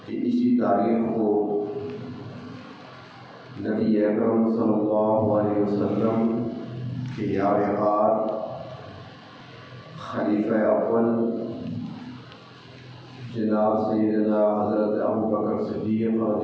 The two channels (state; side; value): identical; both; correlation 1.00